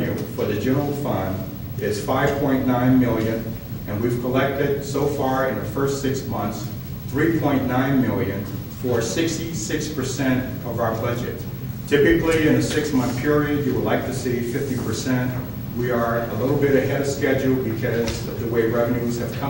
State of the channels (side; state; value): both; identical; correlation 1.00